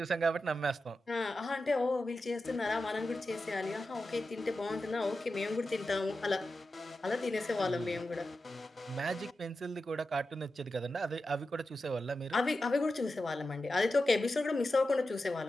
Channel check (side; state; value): both; normal; correlation 0.91